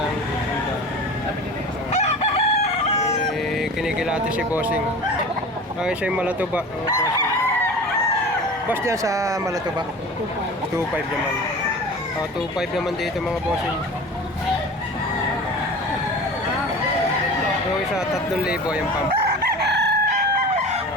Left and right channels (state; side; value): normal; both; correlation 0.36